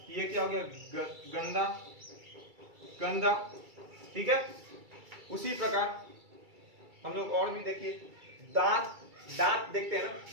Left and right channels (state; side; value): late; left; 2.3 ms